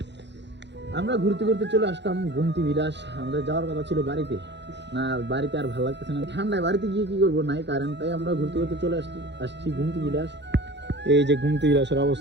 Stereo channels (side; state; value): left; late; 0.51 ms